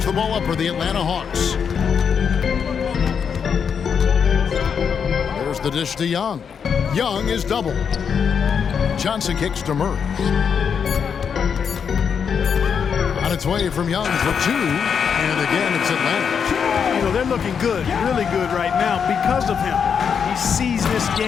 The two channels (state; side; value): quieter; right; 6.9 dB